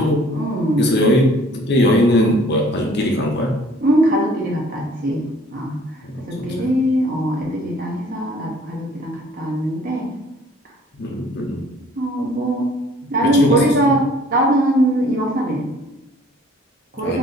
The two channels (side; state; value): both; normal; correlation 0.55